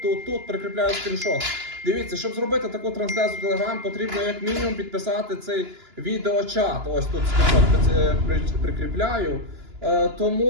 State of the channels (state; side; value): late; left; 2.9 ms